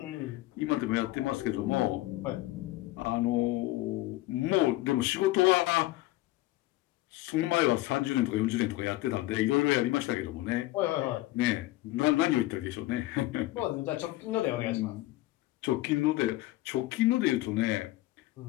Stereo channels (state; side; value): quieter; right; 17.9 dB